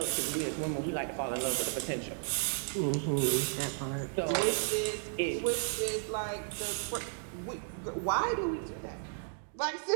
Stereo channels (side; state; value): left; silent; 55 dB below the other